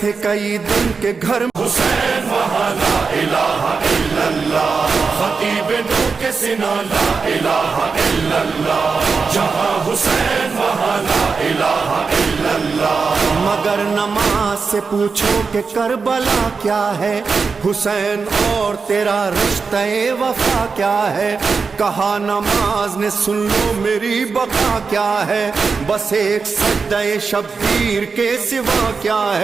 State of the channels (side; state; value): left; quieter; 4.9 dB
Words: थे कई दिन के घर। हुसैन वहाँ ला इलाहा इल्लल्लाह, खतीब नू के सिना ला इलाहा इल्लल्लाह। जहाँ हुसैन वहाँ ला इलाहा इल्लल्लाह। मगर नमाज से पूछो कि करबला क्या है, हुसैन और तेरा रिश्ते वफा क्या है। कहा नमाज ने सुन लो मेरी बका क्या है, बस एक सज्दे शब्बीर के सिवा क्या